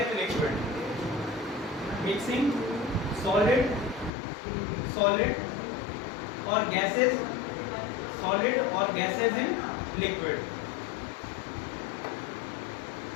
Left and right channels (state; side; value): drops out; right; at 4.1 s